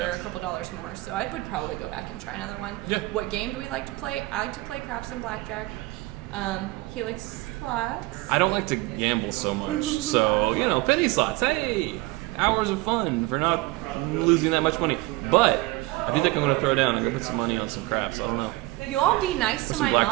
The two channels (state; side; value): quieter; left; 20.8 dB